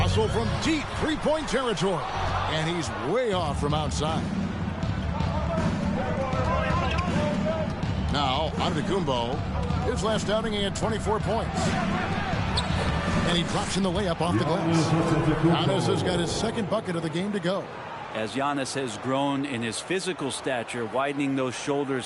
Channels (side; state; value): both; identical; correlation 1.00